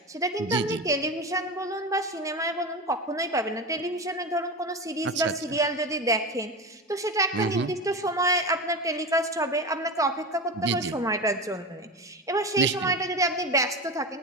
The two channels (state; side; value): normal; both; correlation 0.24